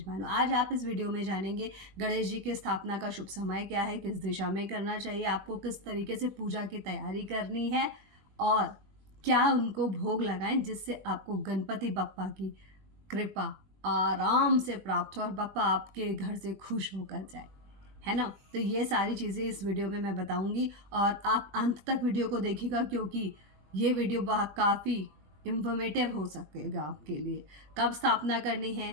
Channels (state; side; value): late; left; 21 ms